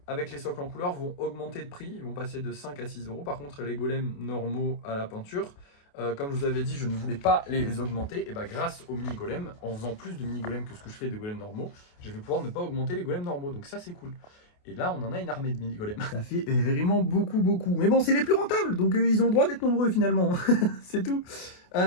avec les socles en couleur vont augmenter de prix, ils vont passer de 5 à 6 €. Par contre, les golems normaux à la peinture, comme je vous avais dit, je ne voulais pas les augmenter. Et grâce aux mini-golems, en faisant plus de mini-golems que ce que je fais de golems normaux, je vais pouvoir ne pas augmenter les golems normaux. Donc ça, c'est cool. Et là, on en a une armée de mini-golems. Ça fait vraiment beaucoup. Mais bon, c'est les plus rentables, donc ils ont le droit d'être nombreux finalement. C'est tout.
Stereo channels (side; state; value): right; late; 28 ms